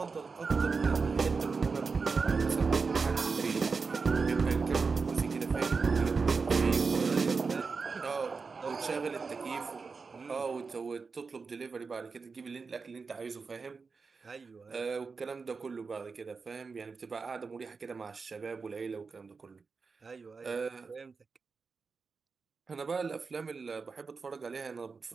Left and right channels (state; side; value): quieter; left; 4.8 dB